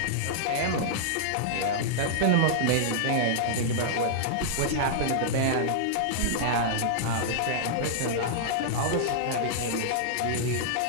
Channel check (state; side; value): different; both; correlation -0.02